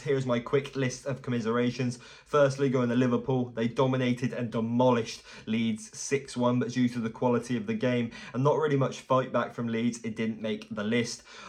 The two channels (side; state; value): both; identical; correlation 1.00